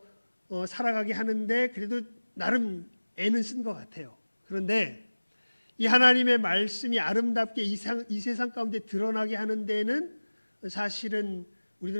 살아가게 하는데 그래도 나름 애는 쓴 것 같아요. 그런데 이 하나님의 말씀이 아름답게 이 세상 가운데 드러나게 하는 데는 사실은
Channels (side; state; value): both; inverted; correlation -1.00